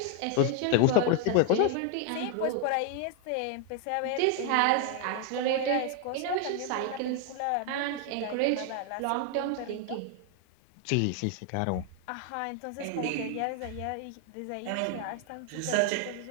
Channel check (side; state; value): both; different; correlation 0.00